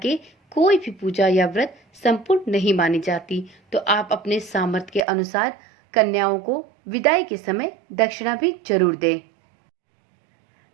कोई भी पूजा या व्रत संपूर्ण नहीं मानी जाती। तो आप अपने सामर्थ्य के अनुसार कन्याओं को विदाई के समय दक्षिणा भी जरूर दें।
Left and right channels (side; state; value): left; drops out; at 5.1 s